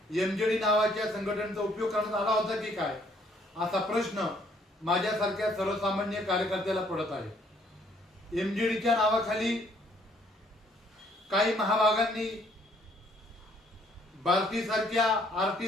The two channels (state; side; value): normal; both; correlation 0.64